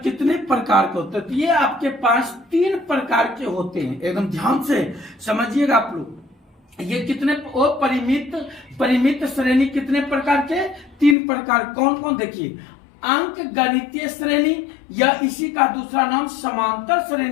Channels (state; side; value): drops out; right; at 11.2 s